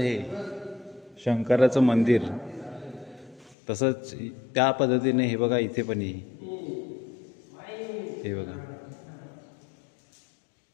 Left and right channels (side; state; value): right; drops out; at 3.6 s